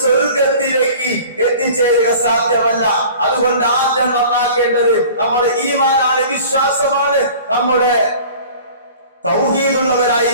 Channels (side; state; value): both; inverted; correlation -0.44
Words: സ്വർഗത്തിലേക്ക് എത്തിച്ചേരുക സാധ്യമല്ല. അതുകൊണ്ട് ആദ്യം നന്നാക്കേണ്ടത് നമ്മുടെ ഈമാനാണ്, വിശ്വാസമാണ്, നമ്മുടെ